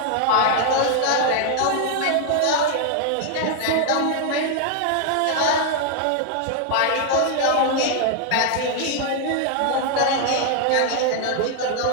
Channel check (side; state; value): both; different; correlation 0.00